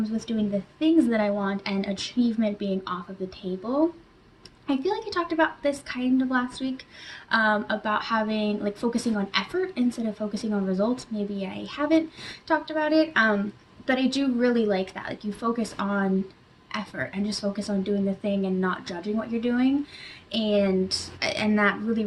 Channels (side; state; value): both; identical; correlation 1.00